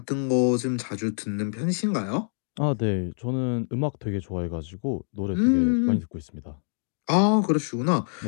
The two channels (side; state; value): right; silent; digital silence